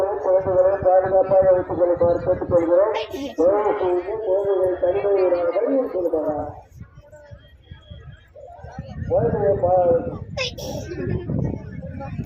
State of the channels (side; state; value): both; identical; correlation 1.00